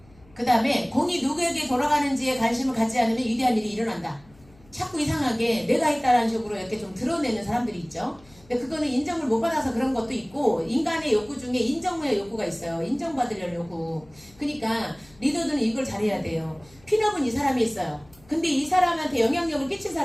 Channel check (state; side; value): noise; left; hum, 27 dB below the sound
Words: 그 다음에 공이 누구에게 돌아가는지에 관심을 갖지 않으면 위대한 일이 일어난다. 자꾸 이상하게 내가 했다라는 식으로 이렇게 좀 드러내는 사람들이 있죠. 근데 그거는 인정을 못 받아서 그런 것도 있고, 인간의 욕구 중에 인정의 욕구가 있어요. 인정받으려는 욕구. 그러니까 리더들은 이걸 잘해야 돼요. 핀업은 이 사람이 있어요. 근데 이 사람한테 영향력을 끼친